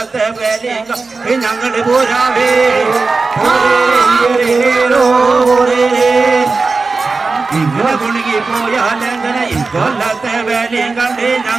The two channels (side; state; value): left; quieter; 4.0 dB